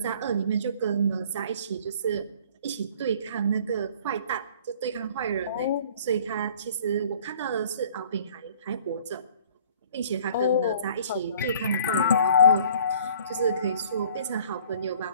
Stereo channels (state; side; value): inverted; both; correlation -0.52